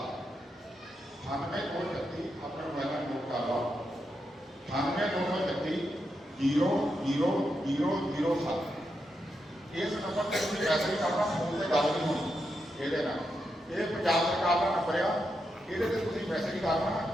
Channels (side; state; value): both; normal; correlation 0.84